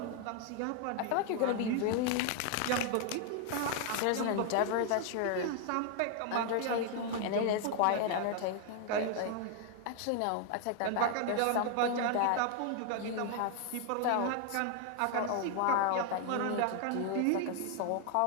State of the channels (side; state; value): both; different; correlation 0.00